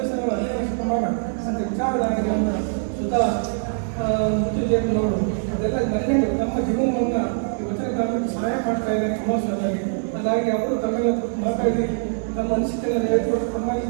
15 ವರ್ಷ ಮಾಡ ಅಂತ ವಿಚಾರಧಾರೆಗಳನ್ನು ಸುಧಾ ಮುತ್ತುಜೇಬನವರು ಅದೆಲ್ಲ ಮನೆಗಳು ನಮ್ಮ ಜೀವನವನ್ನು ಈ ವಚನ ಕಾಲಕ್ಕೆ ಸಹಾಯ ಮಾಡ್ತಾ ಇದ್ದಾರೆ ಎಮೋಷನಲ್. ಹಾಗಾಗಿ ಅವರು ತಮ್ಮೆಲ್ಲ ಮಾತಾಡಿ ತಮ್ಮ ಅನಿಸಿಕೆಗಳನ್ನು ಹೇಳ್ಕೊಟ್ಟು ತಮ್ಮಲ್ಲಿ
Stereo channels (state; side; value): silent; left; digital silence